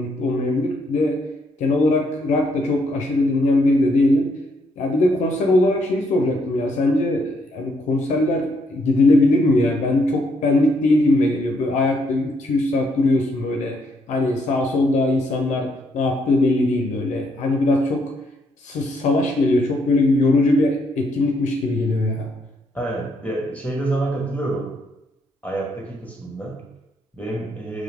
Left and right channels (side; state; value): both; normal; correlation 0.73